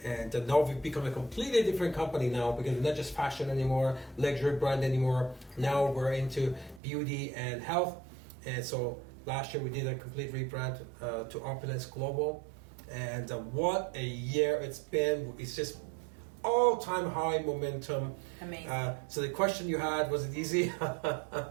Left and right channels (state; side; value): drops out; left; at 6.8 s